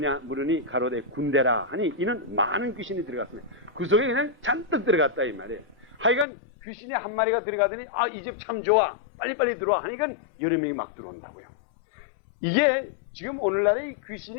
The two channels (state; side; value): drops out; right; at 6.2 s